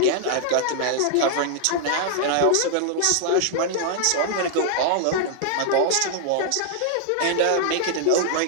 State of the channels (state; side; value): different; both; correlation 0.00